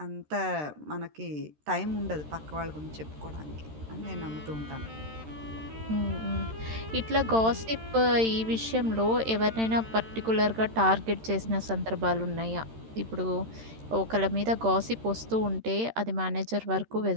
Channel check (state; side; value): late; left; 13 ms